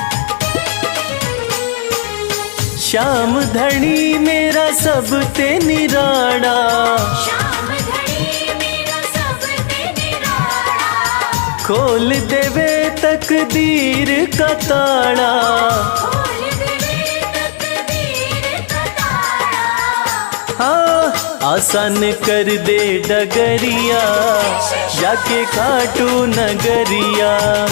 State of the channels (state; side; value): silent; right; digital silence